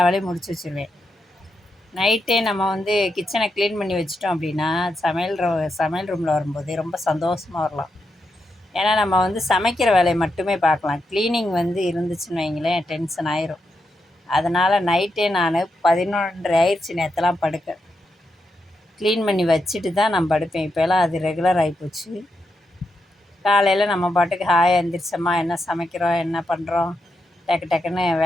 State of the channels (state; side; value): normal; both; correlation 0.85